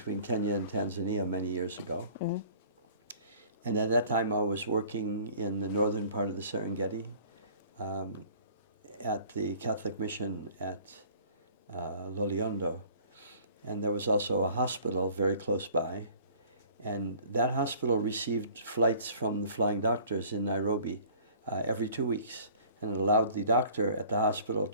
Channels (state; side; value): inverted; both; correlation -0.52